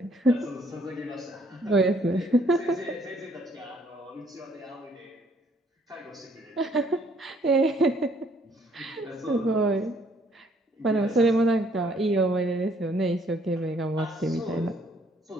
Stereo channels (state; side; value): normal; both; correlation 0.65